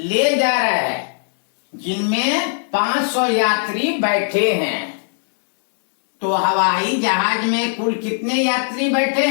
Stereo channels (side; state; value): right; silent; digital silence